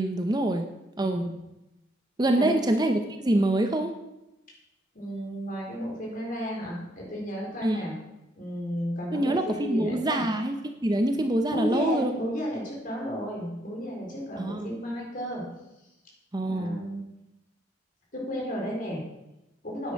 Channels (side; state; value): both; normal; correlation 0.73